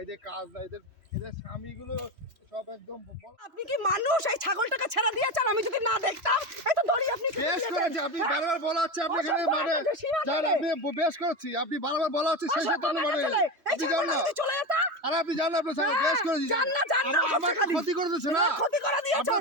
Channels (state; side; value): late; left; 3.0 ms